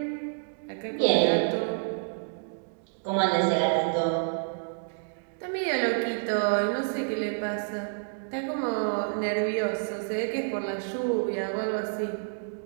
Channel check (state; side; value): silent; left; digital silence